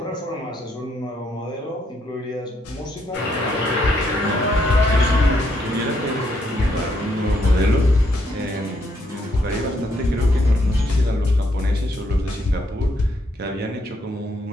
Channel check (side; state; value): both; normal; correlation 0.74